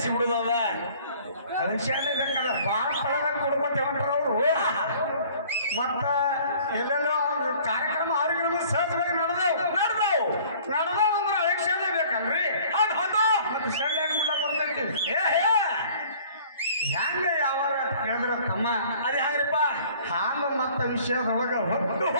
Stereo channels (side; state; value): both; inverted; correlation -0.52